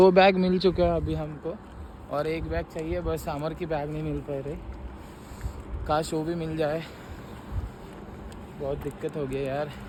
बैग मिल चुके हैं अभी हमको और 1 बैग चाहिए बस अमर की बैग नहीं मिल पा रही काश वो भी मिल जाए बहुत दिक्कत हो गई यार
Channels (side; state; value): both; identical; correlation 1.00